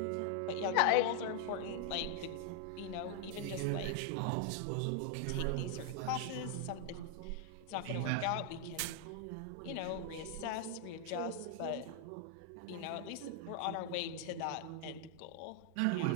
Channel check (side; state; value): both; different; correlation 0.00